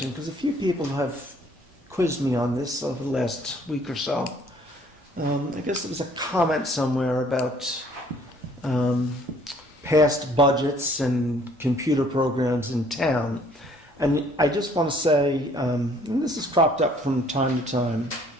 because a few people have quizzed me on this over the last week or so. I guess there was a comment somewhere about past budgets and computer programs in town. And I just want to say, and this has cropped up from time to time,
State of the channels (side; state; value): both; normal; correlation 0.59